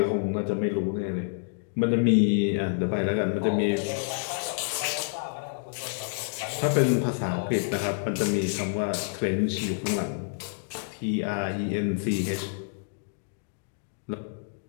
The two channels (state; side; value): silent; right; digital silence